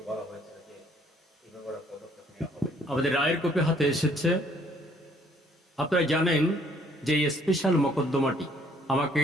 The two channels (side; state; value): both; normal; correlation 0.63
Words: বলা হয়েছে যে এইভাবে একটা পদক্ষেপ নেওয়া হবে। আমাদের রায়ের কপি হাতে এসেছে। আপনারা জানেন যে এই স্পেশাল মোকদ্দমাটি আমাকে